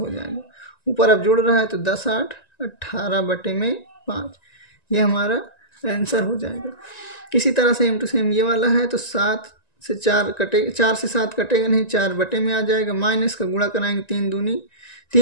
जाएगा। ऊपर अब जुड़ रहा है तो 10 8 18 बटे में 5, ये हमारा आंसर हो जाएगा। इसी तरह से सेम टू सेम ये वाला है तो 7 से 4 कटेगा, 4 से 7 कटेगा नहीं, 4 बटे में आ जाएगा। माइनस का गुणा कराएंगे 3 दूनी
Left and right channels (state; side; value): late; right; 1.9 ms